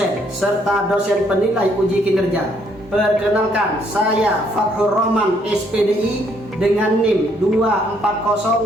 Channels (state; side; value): normal; both; correlation 0.68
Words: serta dosen penilai uji kinerja, perkenalkan saya Fathur Rahman SPDI dengan NIM